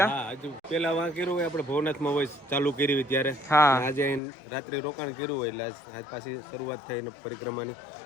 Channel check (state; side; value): drops out; right; at 4.2 s